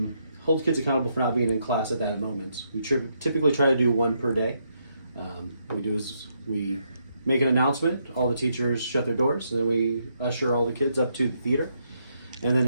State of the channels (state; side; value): inverted; both; correlation -0.77